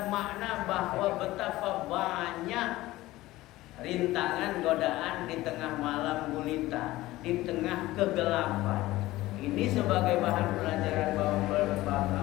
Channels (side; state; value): right; quieter; 17.5 dB